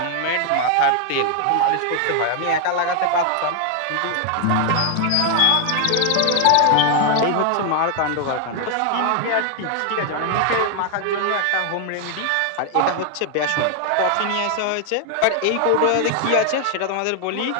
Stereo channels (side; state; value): both; different; correlation 0.00